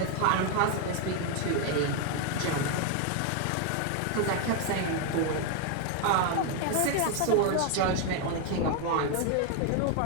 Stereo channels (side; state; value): both; different; correlation 0.01